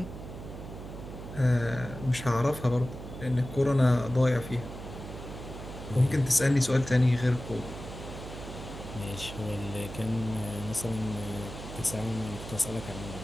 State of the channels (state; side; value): noise; right; hum, 11 dB below the sound